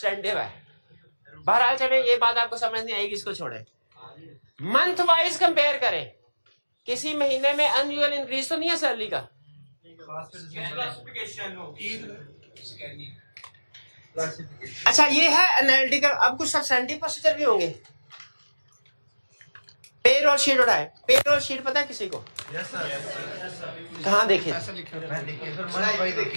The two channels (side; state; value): both; inverted; correlation -1.00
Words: है। बहरहाल चले, ये बात आपको समझ नहीं आएगी, इसको छोड़े। मंथ वाइज कंपेयर करें, किसी महीने में अनयूजुअल इंक्रीज तो नहीं है सैलरी का। अच्छा ये है एनालिटिकल। अब कुछ सब्सटेंटिव प्रोसीजर भी होंगे। पेरोल शीट उठाए, पेरोल शीट पता है किसी को? कहाँ देखे?